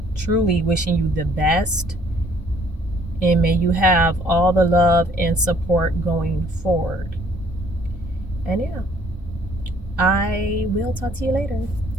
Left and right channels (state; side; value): normal; both; correlation 0.60